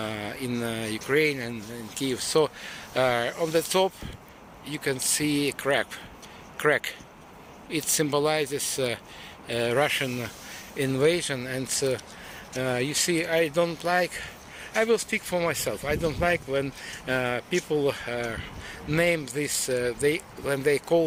in Ukraine and in Kyiv. So on the top you can see a crack. It symbolizes Russian invasion, and you see, I will speak for myself. I don't like when people name this, when they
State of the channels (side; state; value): both; identical; correlation 1.00